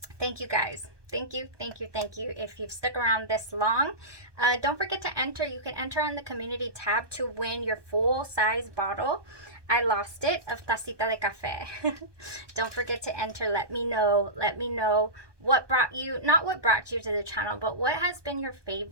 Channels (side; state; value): left; late; 1.2 ms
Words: Thank you, guys. Thank you, thank you, thank you. If you've stuck around this long, don't forget to enter. You can enter on the community tab to win your full-size bottle. I lost it, of Tacita de Café. Don't forget to enter. Let me know what brought you, not what brought you to the channel, but what has been your